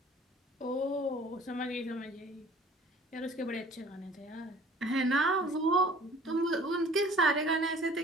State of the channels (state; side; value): normal; both; correlation 0.50